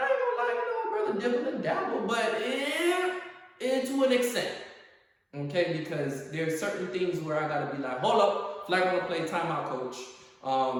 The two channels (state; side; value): identical; both; correlation 1.00